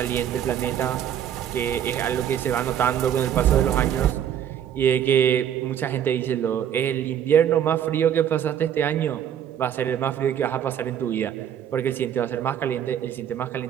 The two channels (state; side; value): quieter; left; 9.6 dB